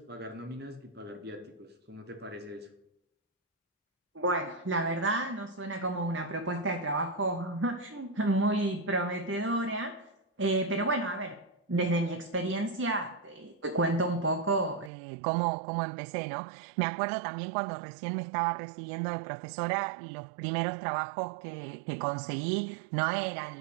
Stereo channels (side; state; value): left; drops out; at 14.9 s